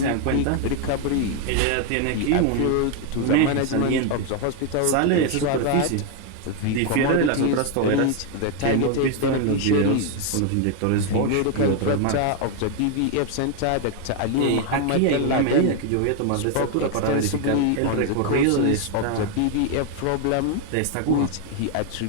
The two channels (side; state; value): both; different; correlation 0.01